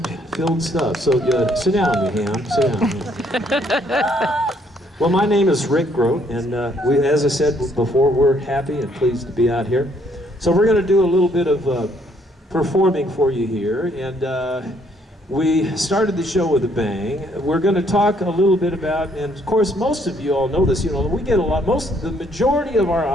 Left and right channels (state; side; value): normal; both; correlation 0.67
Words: stuff. So sit down, you ham, sit down. Well, my name is Rick Groat, and as I said before, we're happy and pleased to be out here. So we're going to do a little bit of performing for you here, and we started the show with a bang. We're going to talk a little bit about, and of course, most of you all know this. You know, we get the majority of our